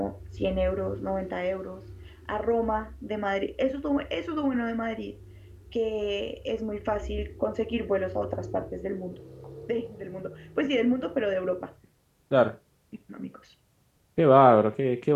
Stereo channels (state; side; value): identical; both; correlation 1.00